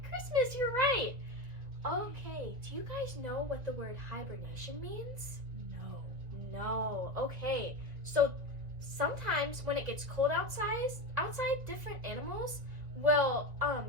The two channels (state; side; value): late; left; 1.7 ms